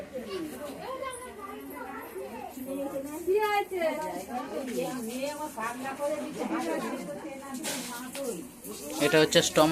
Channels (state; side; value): identical; both; correlation 1.00